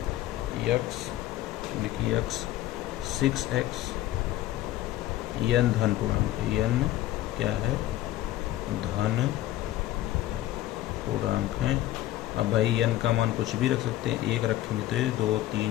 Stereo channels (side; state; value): right; quieter; 14.6 dB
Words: यक्स, लिखिए यक्स 6x, यन धन पूर्णांक है, यन क्या है, धन पूर्णांक है। अब भाई यन का मान कुछ भी रख सकते हैं, एक रखेंगे तो ये 2